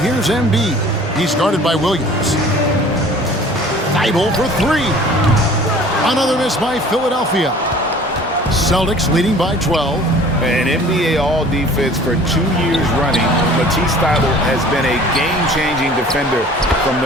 Embiid. He's guarded by Williams. Thibault for three. Another miss by Philadelphia. Celtics leading by 12. An NBA All-Defense for 2 years running. Matisse Thybulle has been a game-changing defender from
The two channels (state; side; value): normal; both; correlation 0.48